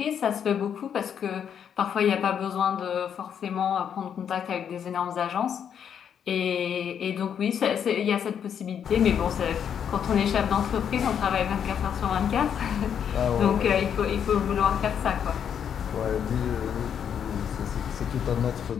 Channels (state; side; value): quieter; right; 8.3 dB